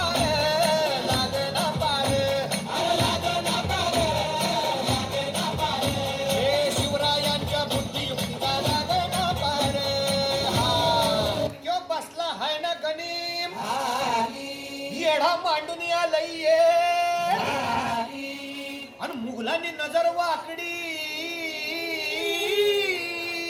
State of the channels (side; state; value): both; identical; correlation 1.00